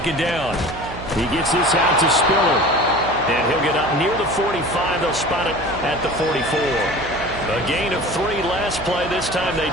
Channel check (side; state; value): right; noise; hum, 12 dB below the sound